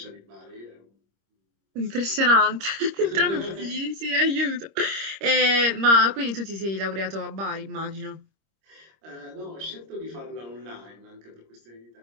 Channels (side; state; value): left; late; 26 ms